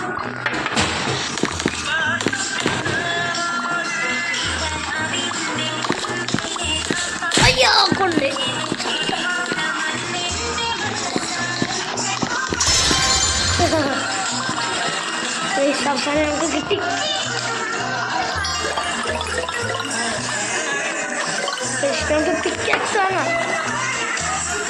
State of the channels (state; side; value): identical; both; correlation 1.00